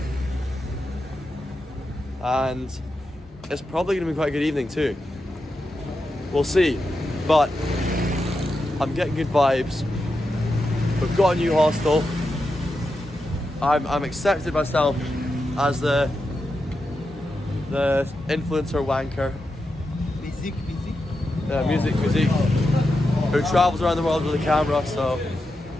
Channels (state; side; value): normal; both; correlation 0.88